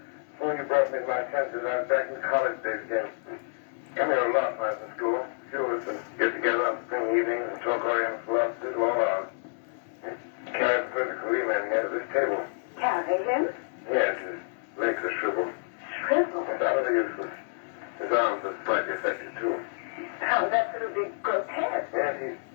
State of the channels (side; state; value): right; silent; digital silence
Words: Before you brought me to my senses, I was back in college days again. Come here a lot when I was in school. A few of us would get together on spring evenings and talk Oriental philosophy all hours. Carried Professor Kaliman here to this table. Carry him? Yes, his legs are shriveled. Shriveled? Utterly useless. His arms are slightly affected, too. Sounds absolutely grotesque. Yes, he's